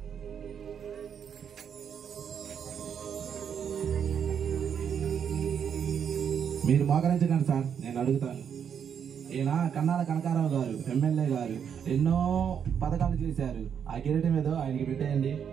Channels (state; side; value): quieter; left; 7.8 dB